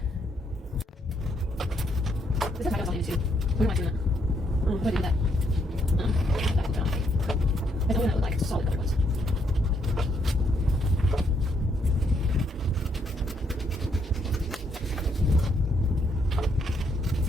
This is my on YouTube. We're not doing that. We're doing that. That will be on tape. I don't know what that would like. It's a solid color ones.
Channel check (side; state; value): both; normal; correlation 0.74